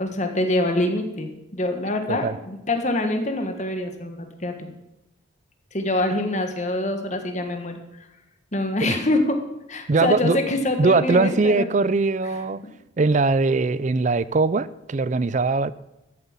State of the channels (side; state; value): both; normal; correlation 0.34